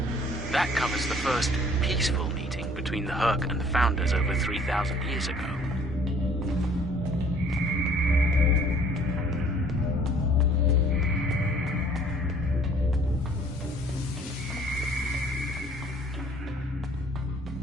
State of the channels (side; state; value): both; normal; correlation 0.56